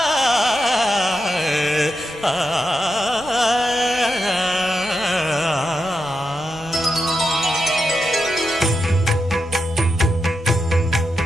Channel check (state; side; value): noise; right; rumble, 22 dB below the sound